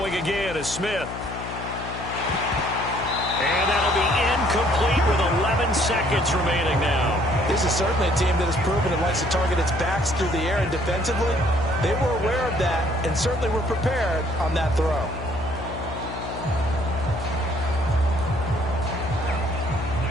again is Smith. And that'll be incomplete with 11 seconds remaining now. This is certainly a team that has proven it likes to target its backs through the air, and defensively, they were aware of that and certainly were prepared on that throw.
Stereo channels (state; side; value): noise; left; hum, 9 dB below the sound